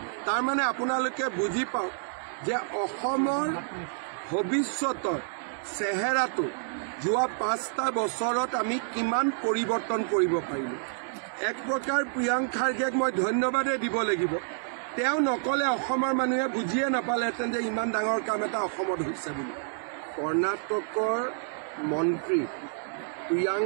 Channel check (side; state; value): left; silent; digital silence